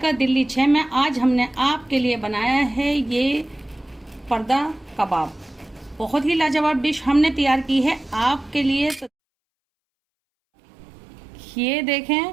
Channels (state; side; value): drops out; left; at 9.1 s